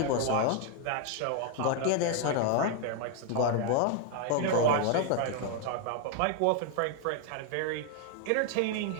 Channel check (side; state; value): both; different; correlation 0.00